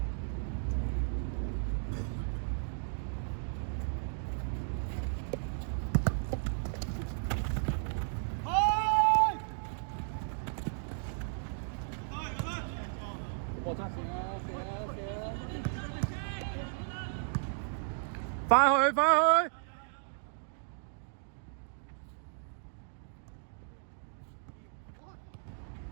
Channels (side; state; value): left; silent; digital silence